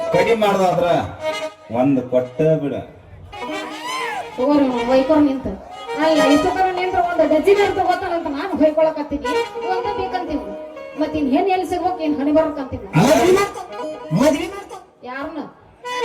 ಕಡಿಮೆ ಮಾಡ್ದಾದ್ರ ಒಂದ್ ಕೊಟ್ಟ ಬಿಡ ತಗೋರಿ ವೈಕೋರ್ ನಿಂತ ಅಲ್ಲ ಇಷ್ಟೊತ್ತರ ನಿಂತ್ರ ಒಂದು ಡಜನ್ ತಗೋತಾನಂತ ನಾನು ಹೊಯ್ಕೊಳಕತ್ತೀನಿ ಒಂದ ಬೇಕಂತೀನಿ ಮತ್ತಿನ್ ಹೆಣ್ ಎಲ್ಲಿ ಸಿಗ್ಬೇಕು ಏನ್ ಹಣಿ ಬರ್ಬೇಕಂತೀನಿ ಯಾರನ್ನ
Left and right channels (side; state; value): both; identical; correlation 1.00